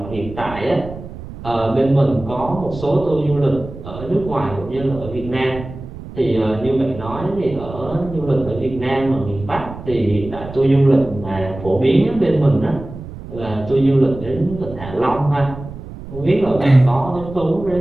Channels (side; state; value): right; noise; rumble, 13 dB below the sound